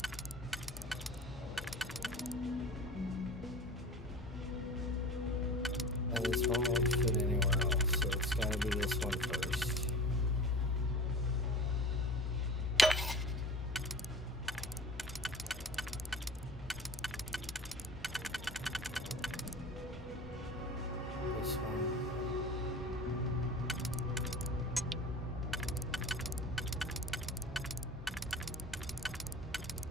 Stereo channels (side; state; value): both; normal; correlation 0.38